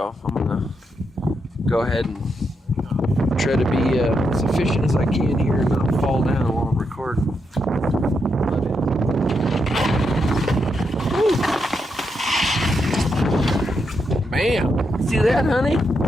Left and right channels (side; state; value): both; normal; correlation 0.82